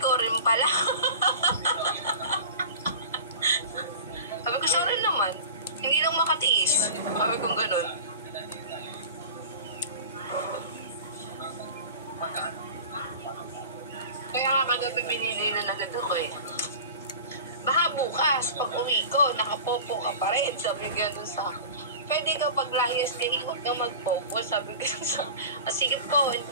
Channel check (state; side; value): inverted; both; correlation -0.36